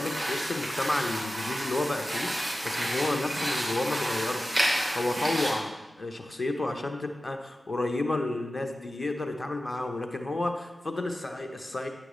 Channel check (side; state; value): both; normal; correlation 0.94